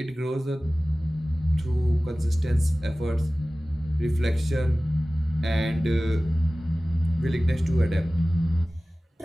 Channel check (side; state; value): both; normal; correlation 0.97